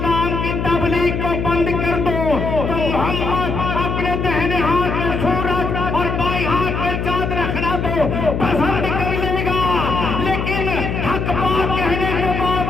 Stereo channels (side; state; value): left; noise; hum, 2 dB below the sound